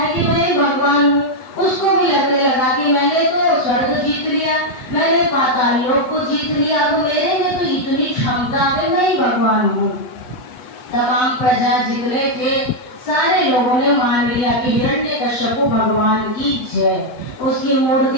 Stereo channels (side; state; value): right; late; 7.8 ms